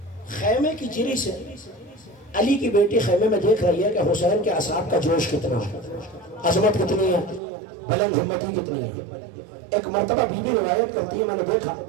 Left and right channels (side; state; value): left; drops out; at 7.4 s